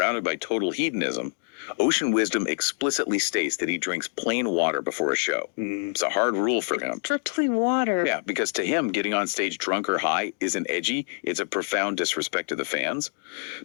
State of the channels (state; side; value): silent; right; 60 dB below the other